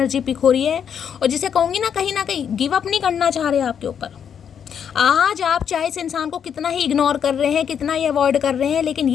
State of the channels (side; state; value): right; quieter; 8.0 dB